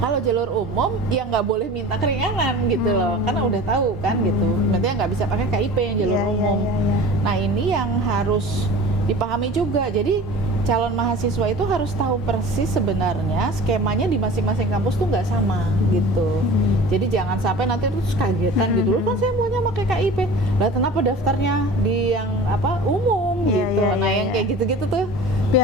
Kalau jalur umum ya nggak boleh minta keringanan gitu loh, karena udah tahu kan gitu. Berarti nggak bisa pakai KIP yang jalur umum. Nah ini yang harus dipahami juga. Jadi calon mahasiswa itu harus tahu persis sebenarnya skemanya di masing-masing kampus tuh nggak sama gitu. Jadi jangan sampai nanti terus kagetan gitu loh, kan saya maunya pakai KIP, lah kenapa daftarnya di yang apa umum gitu. Nah yang kayak gitu-gitu tuh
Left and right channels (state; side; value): normal; both; correlation 0.39